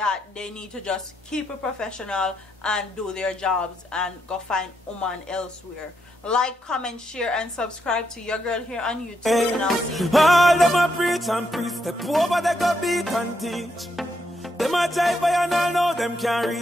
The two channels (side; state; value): both; normal; correlation 0.79